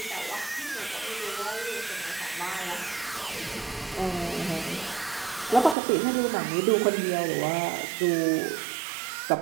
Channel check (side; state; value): left; drops out; at 5.8 s